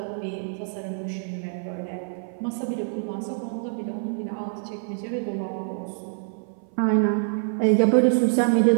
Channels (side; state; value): left; silent; 57 dB below the other